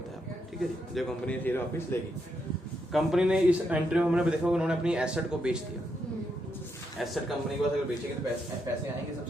है। ठीक है जी, जब कंपनी शेयर वापस लेगी। कंपनी ने इस एंट्री में हमने देखा उन्होंने अपनी एसेट को बेच दिया। एसेट कंपनी के पास अगर बेचेगी तो पैसे आएंगे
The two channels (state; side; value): normal; both; correlation 0.80